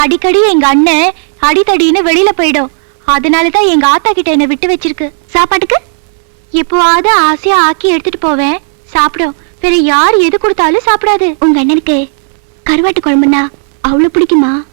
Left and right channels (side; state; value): left; silent; 62 dB below the other